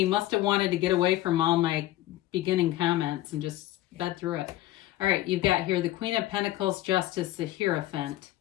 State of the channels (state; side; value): quieter; right; 15.7 dB